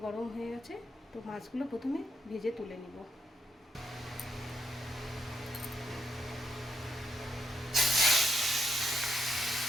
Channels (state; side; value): normal; both; correlation 0.79